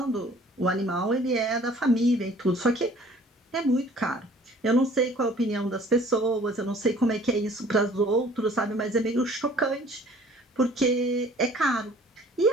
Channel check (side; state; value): both; normal; correlation 0.53